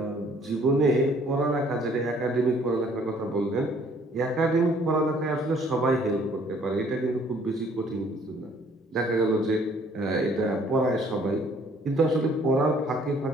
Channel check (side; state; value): both; normal; correlation 0.59